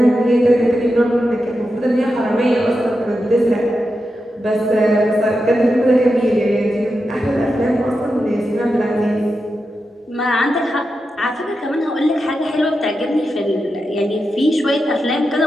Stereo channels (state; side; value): normal; both; correlation 0.89